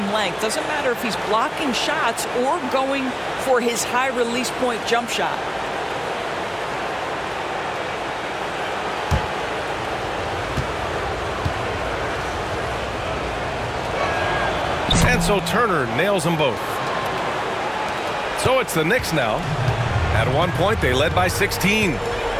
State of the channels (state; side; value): identical; both; correlation 1.00